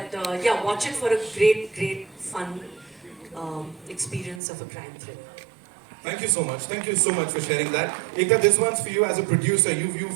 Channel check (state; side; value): drops out; left; at 4.4 s